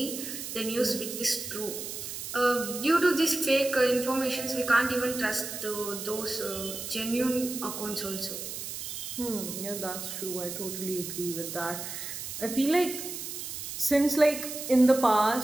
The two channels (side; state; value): right; noise; hiss, 7 dB below the sound